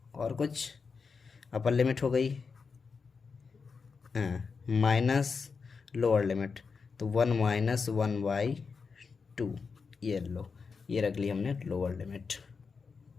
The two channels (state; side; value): quieter; right; 5.2 dB